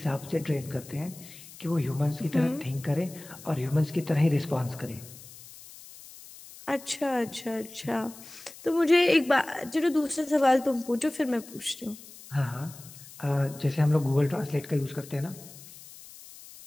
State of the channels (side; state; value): left; noise; hiss, 18 dB below the sound